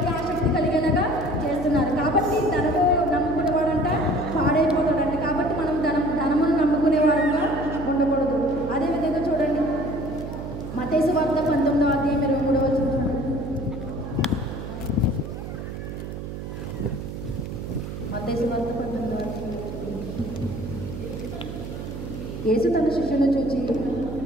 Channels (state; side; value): noise; right; hum, 8 dB below the sound